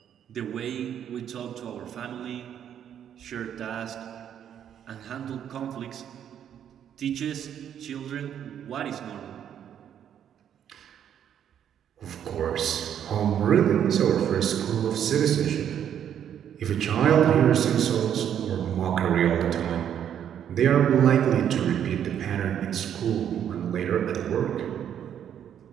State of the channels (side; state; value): left; quieter; 9.4 dB